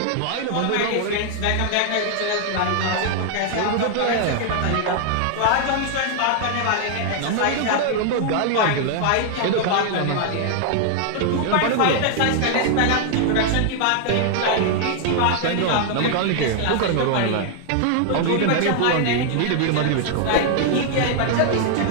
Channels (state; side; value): different; both; correlation 0.00